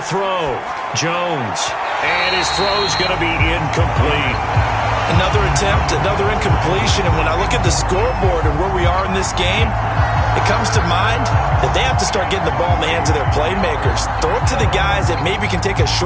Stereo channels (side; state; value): both; identical; correlation 1.00